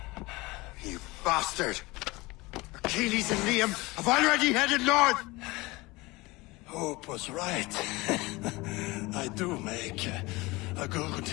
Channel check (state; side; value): quieter; right; 22.3 dB